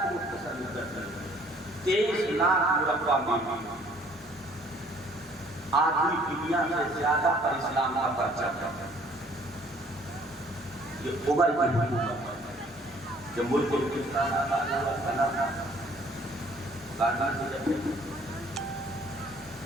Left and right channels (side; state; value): both; normal; correlation 0.59